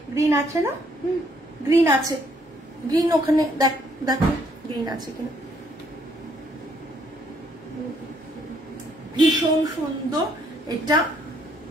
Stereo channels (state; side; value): normal; both; correlation 0.68